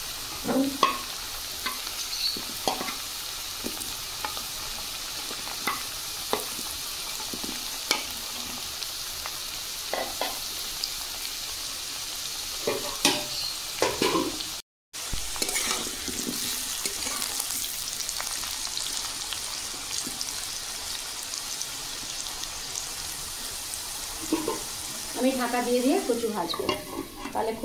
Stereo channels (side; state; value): both; identical; correlation 1.00